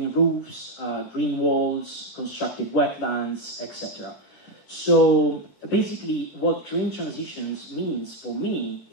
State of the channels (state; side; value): late; right; 4.5 ms